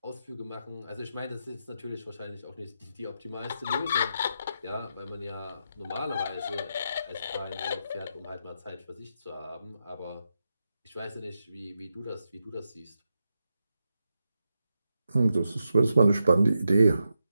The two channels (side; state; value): both; inverted; correlation -0.86